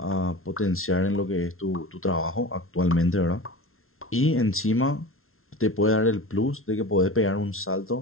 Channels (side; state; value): right; late; 0.62 ms